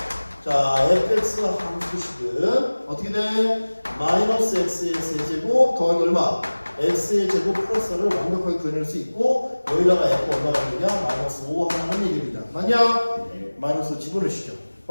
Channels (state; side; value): inverted; both; correlation -1.00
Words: 자, fx의 함수식은 어떻게 돼? 마이너스 x의 세제곱 더하기 얼마? x의 제곱 플러스를 완벽하게 구현할 수 있고, 여기다가 f 얼마가 되냐? 마이너스 5 하는 얘기입니다. 맞냐? 마이너스 집어넣으시죠.